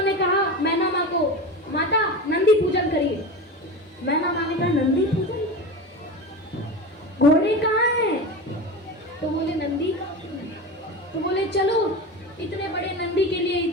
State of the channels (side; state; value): both; normal; correlation 0.26